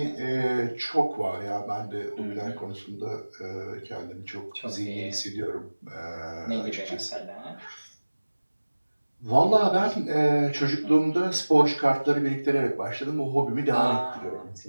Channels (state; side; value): inverted; both; correlation -1.00